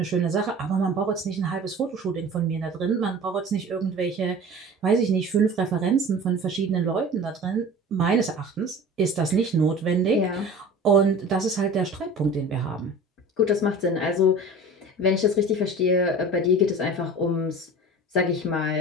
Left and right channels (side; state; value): both; normal; correlation 0.39